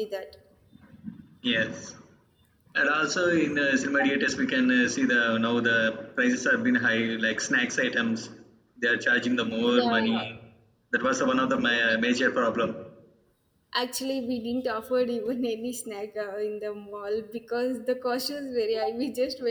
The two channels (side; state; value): both; identical; correlation 1.00